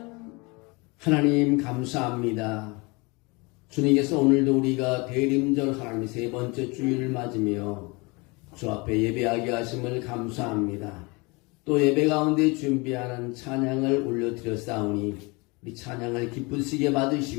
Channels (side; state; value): right; quieter; 27.2 dB